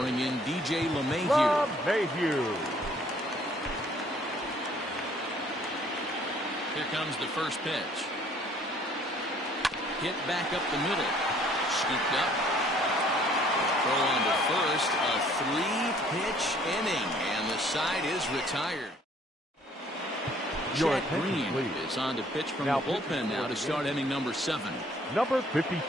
bring in DJ LeMahieu. LeMahieu. Here comes the first pitch. Hit back up the middle. Scooped up. Throw on to first. A 3-pitch inning. And the side is retired. Jack Green is on to pitch from the bullpen now to start inning number 7. Number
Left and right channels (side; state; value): both; normal; correlation 0.59